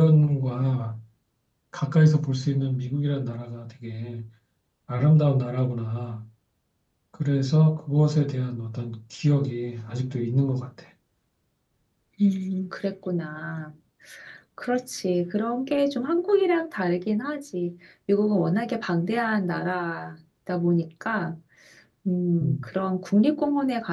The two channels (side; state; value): both; identical; correlation 1.00